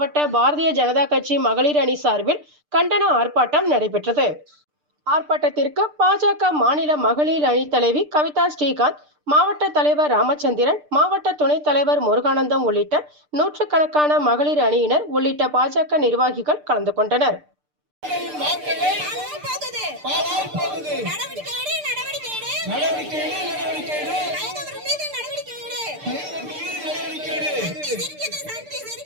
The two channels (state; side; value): late; left; 6.7 ms